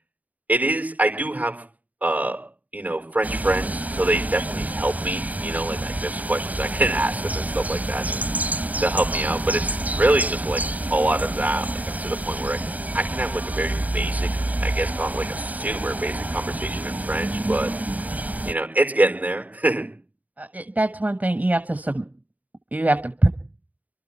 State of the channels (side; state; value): left; late; 0.075 ms